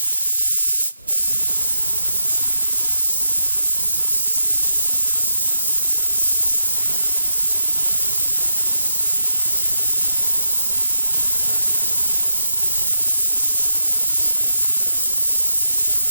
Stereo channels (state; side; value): inverted; both; correlation -0.86